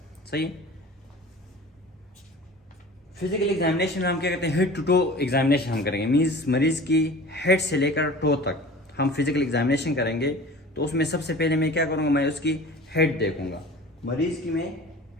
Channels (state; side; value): normal; both; correlation 0.40